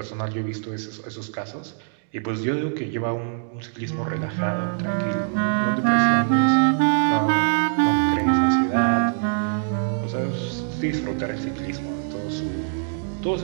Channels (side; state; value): left; silent; digital silence